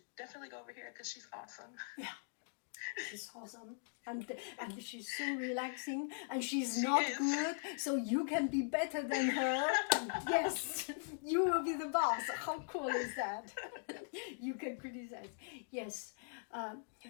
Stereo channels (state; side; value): silent; right; digital silence